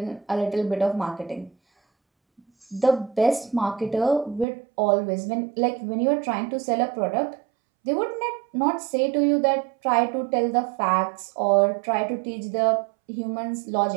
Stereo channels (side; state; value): left; drops out; at 4.5 s